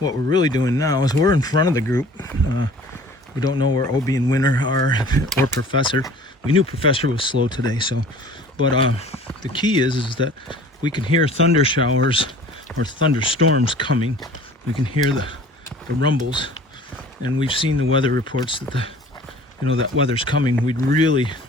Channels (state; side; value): normal; both; correlation 0.47